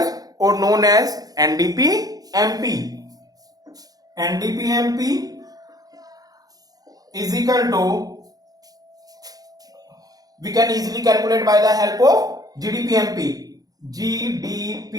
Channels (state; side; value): late; left; 0.18 ms